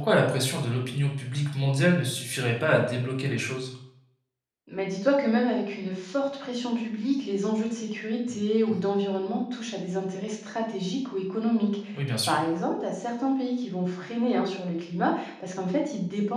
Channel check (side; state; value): both; identical; correlation 1.00